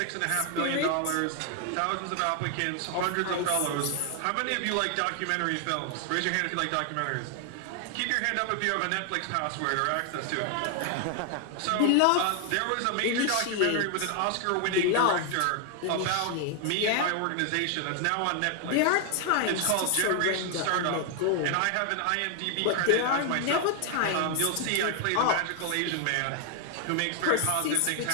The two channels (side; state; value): both; different; correlation 0.00